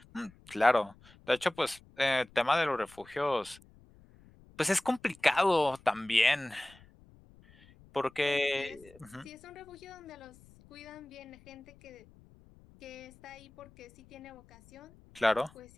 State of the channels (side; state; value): left; noise; rumble, 25 dB below the sound